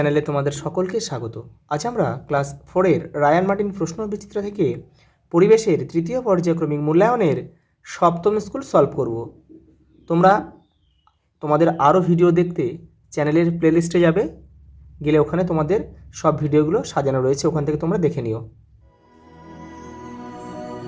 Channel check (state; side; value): identical; both; correlation 1.00